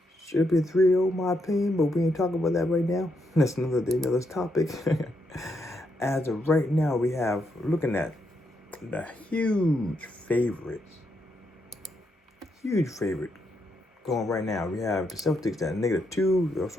Should be 3-0, my opinion, but we ain't talking about that right now. That's another day, another topic. As of right now, we have, looking at the huge favorite going right now. We have the Celtics at -2,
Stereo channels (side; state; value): both; normal; correlation 0.79